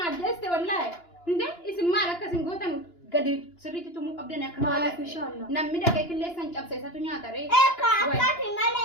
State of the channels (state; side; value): late; right; 2.9 ms